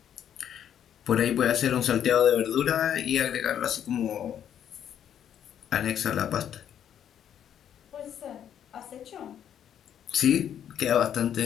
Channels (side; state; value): right; quieter; 9.6 dB